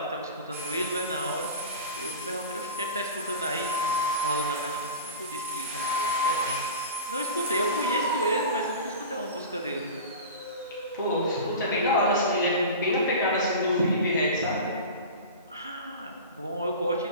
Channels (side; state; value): both; inverted; correlation -0.32